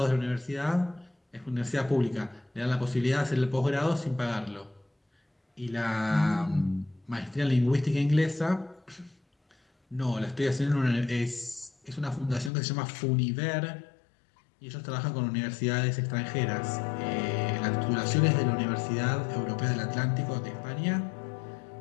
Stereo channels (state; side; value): drops out; right; at 12.5 s